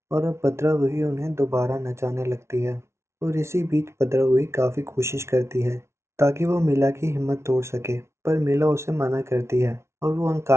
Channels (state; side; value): late; left; 0.13 ms